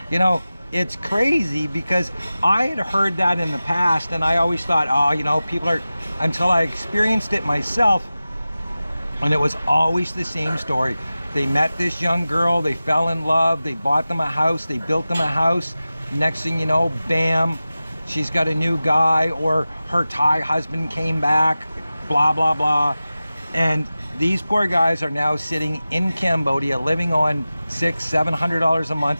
You know, it's crazy because I had heard that in the past, and I always thought, oh, you know, people are, until I experienced it myself, and it was always the same story. They met this young girl, they fell in love, they bought them a house, they built them a house. Next thing you know, bam, she's got a new guy, or her Thai husband came back, blah, blah, blah. And these poor guys are now sitting in Cambodia living on $600-700 a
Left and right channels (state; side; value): inverted; both; correlation -0.96